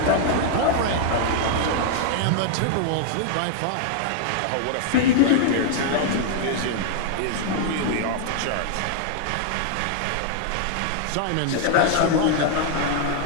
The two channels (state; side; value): different; both; correlation -0.01